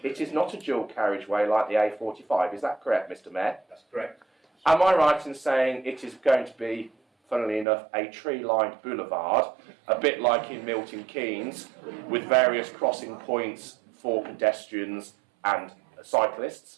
it is not a dual carriageway like the A45. Is that correct, Mr. Mayor? That's correct. Am I right in saying it is going to be, funnily enough, a tree-lined boulevard, a bit like in Milton Keynes, with various crossing points for pedestrians and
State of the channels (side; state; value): left; drops out; at 7.7 s